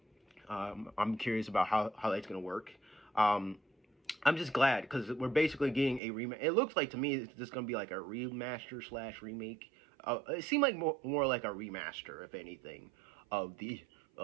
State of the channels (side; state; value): left; drops out; at 6.0 s